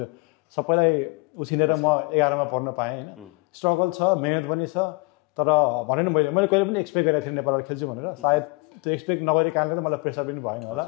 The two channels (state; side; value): quieter; right; 29.0 dB